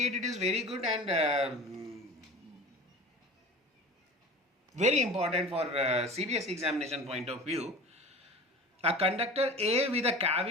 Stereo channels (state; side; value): normal; both; correlation 0.37